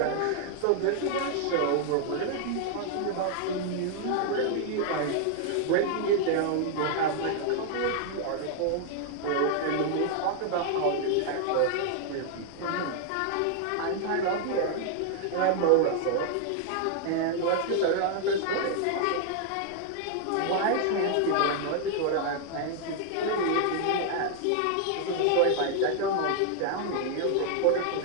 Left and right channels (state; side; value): different; both; correlation 0.00